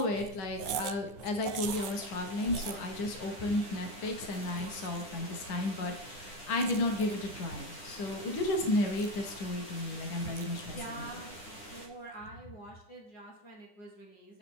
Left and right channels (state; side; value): late; right; 9.9 ms